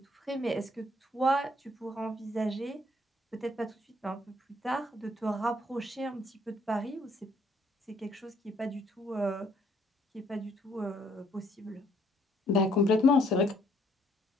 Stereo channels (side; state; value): both; normal; correlation 0.66